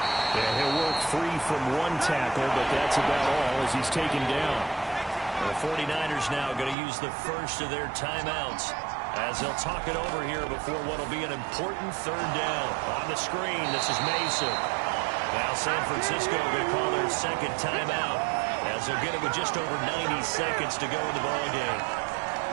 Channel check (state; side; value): drops out; left; at 6.8 s